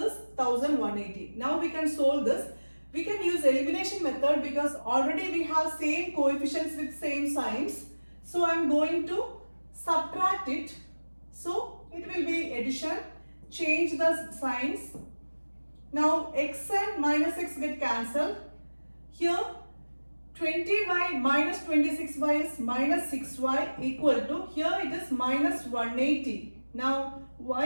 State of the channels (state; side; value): inverted; both; correlation -1.00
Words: 1180. Now we can solve this. We can use elimination method because already we have same coefficients with same signs. So I am going to subtract it. So it will be addition. Change the signs. Now x and minus x get cancelled. Here 20y minus 26y is minus 6y equal to, here it is minus 180. Now y